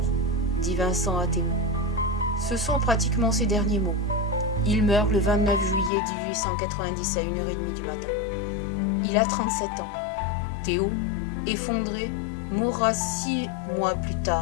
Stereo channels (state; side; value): drops out; right; at 5.9 s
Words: », dit Vincent à Théo. Ce sont pratiquement ses derniers mots. Il meurt le 29 juillet 1890 à 1h30 du matin. Il a 37 ans. Théo, effondré, mourra 6 mois plus